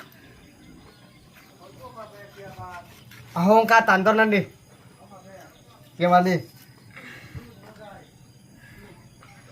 Ahong katan tao đi. Gimana đi?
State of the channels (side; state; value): both; identical; correlation 1.00